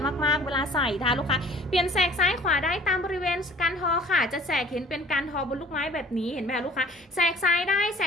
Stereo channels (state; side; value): normal; both; correlation 0.51